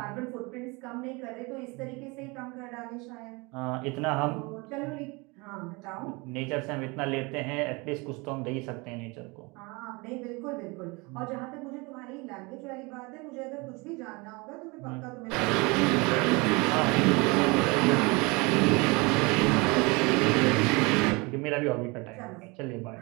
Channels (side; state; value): left; quieter; 26.8 dB